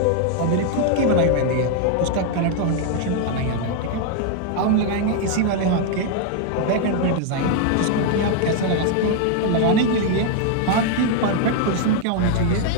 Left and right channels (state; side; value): different; both; correlation 0.00